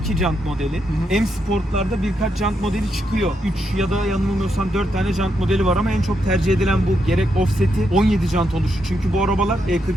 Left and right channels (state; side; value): normal; both; correlation 0.81